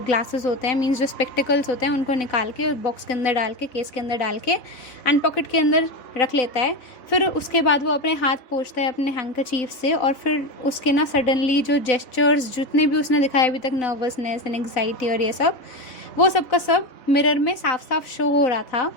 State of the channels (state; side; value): late; right; 4.0 ms